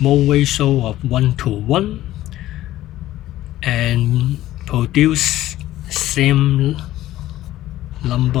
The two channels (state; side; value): quieter; right; 14.7 dB